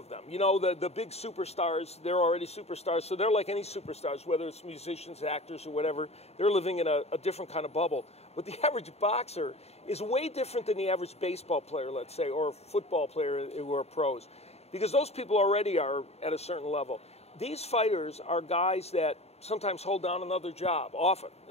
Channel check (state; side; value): late; right; 0.30 ms